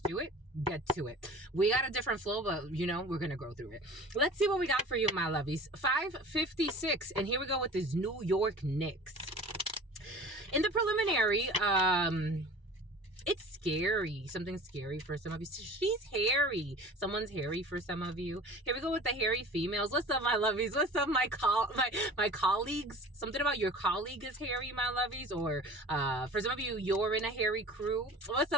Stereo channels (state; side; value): late; left; 1.0 ms